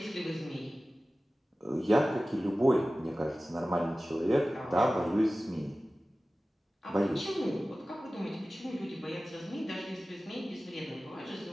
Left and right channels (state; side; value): normal; both; correlation 0.96